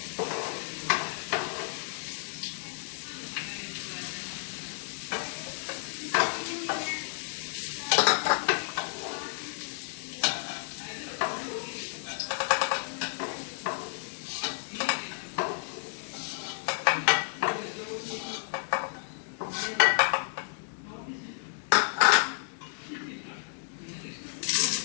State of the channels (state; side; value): silent; right; digital silence